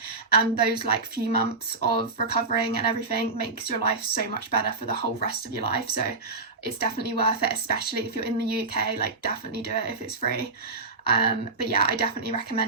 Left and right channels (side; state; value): left; quieter; 3.9 dB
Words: And those like few months of recovering and everything makes your life so much better for the whole rest of your life. So it's definitely worth it, especially if you're in the UK. Like definitely do it if it's free. But yeah, I definitely